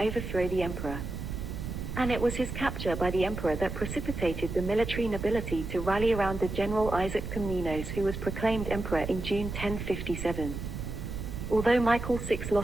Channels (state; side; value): noise; right; rumble, 6 dB below the sound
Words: the emperor. And it was his capture by the emperor that precipitated the military nobility to rally around the general Isaac Komnenos, who was proclaimed emperor in June 1057. Although Michael VI